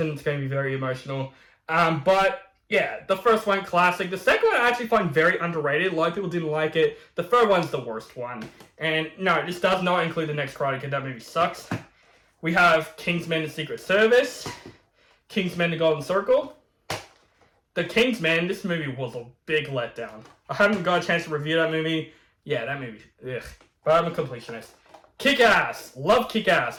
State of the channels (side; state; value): both; identical; correlation 1.00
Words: It's going to be very emotional. But, yeah, the first one, classic. The second one I actually find very underrated. A lot of people didn't like it. The third one's the worst one. And, no, this does not include the next Karate Kid. That movie sucks. We have Kingsman: The Secret Service. Kingsman: The Golden Circle. The Kingsman, this movie was a big letdown. I haven't got a chance to review that movie. Yeah, that movie, ugh. But I'm a completionist. Kick-Ass. Love